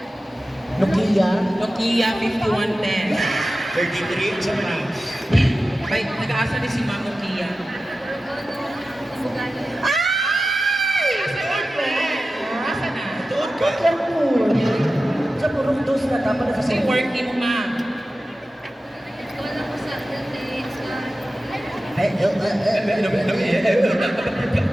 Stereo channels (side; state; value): both; normal; correlation 0.94